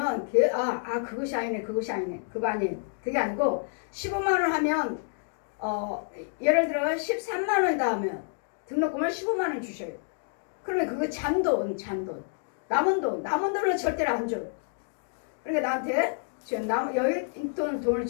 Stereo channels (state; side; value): silent; right; digital silence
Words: 그것이 아니네 그거 아니에요. 그게 아니고 15만원 하면 예를 들어 13만원이다 하면 등록금을 15만원 주셔요. 그러면 그거 잔돈 남은 돈은 절대로 안 줘요. 그러니까 나한테 지금 여유 있던 돈을